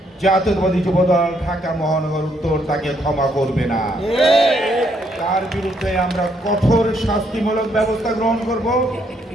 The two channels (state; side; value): normal; both; correlation 0.72